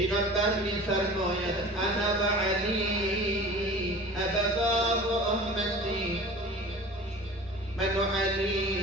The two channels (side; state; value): both; normal; correlation 0.40